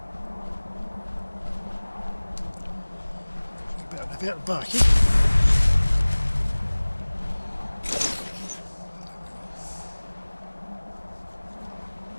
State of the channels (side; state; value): both; inverted; correlation -1.00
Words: A bit back, eh?